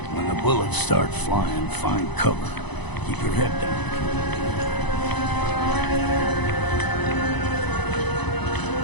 When the bullets start flying, find cover. Keep your head down.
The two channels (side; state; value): right; late; 1.0 ms